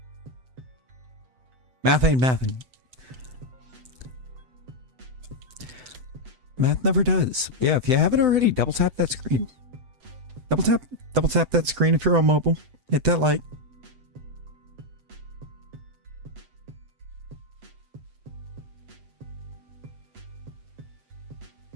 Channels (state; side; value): late; left; 7.9 ms